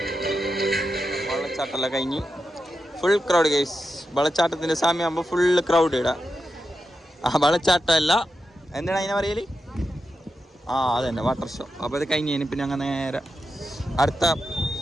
വെള്ളച്ചാട്ടമെല്ലാം കഴിഞ്ഞ് ഫുൾ ക്രൗഡ് ഗൈസ്. വെള്ളച്ചാട്ടത്തിൻ്റെ സമയമാകുമ്പോൾ ഫുള്ള് ക്രൗഡ് ഇടാം. ആ വെള്ളച്ചാട്ടമല്ല, എന്താണ് അതിനെ പറയല്? അതന്നെ വാട്ടർ ഷോ. അപ്പോൾ അത് കഴിഞ്ഞ് പിന്നെ അങ്ങനെ നേരെ അടുത്ത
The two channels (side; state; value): both; normal; correlation 0.88